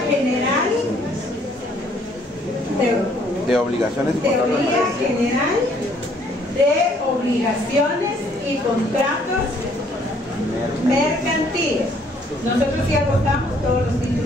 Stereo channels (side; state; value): both; normal; correlation 0.63